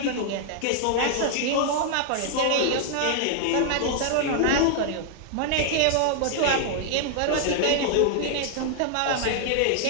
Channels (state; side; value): different; both; correlation -0.01